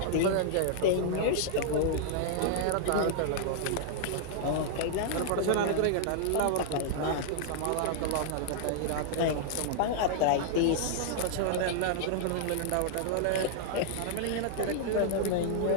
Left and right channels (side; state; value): both; different; correlation -0.01